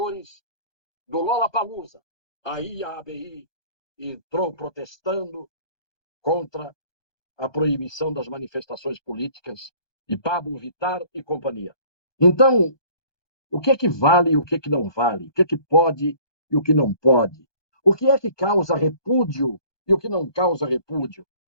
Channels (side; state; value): right; late; 1.2 ms